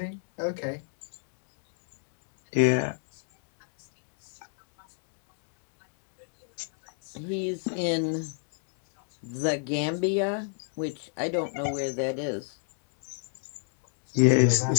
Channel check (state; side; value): silent; right; 57 dB below the other